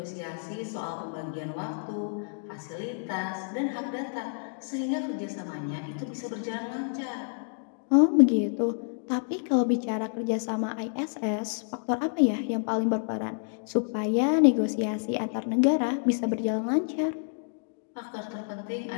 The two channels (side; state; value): right; silent; digital silence